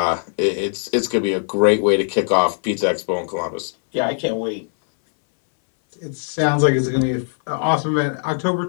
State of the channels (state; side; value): silent; right; 63 dB below the other